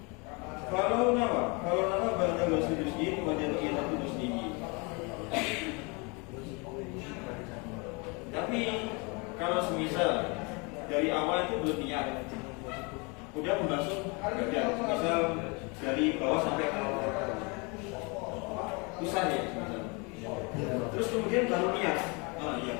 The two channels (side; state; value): right; quieter; 30.4 dB